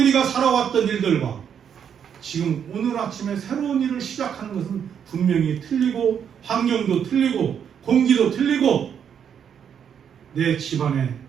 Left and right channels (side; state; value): left; quieter; 8.1 dB